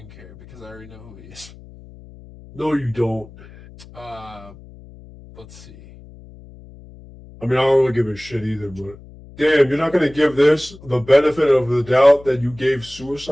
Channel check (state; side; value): noise; left; hum, 20 dB below the sound